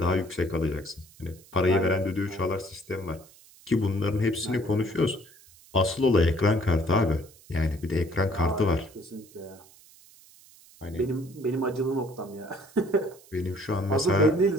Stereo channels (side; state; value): right; noise; hiss, 25 dB below the sound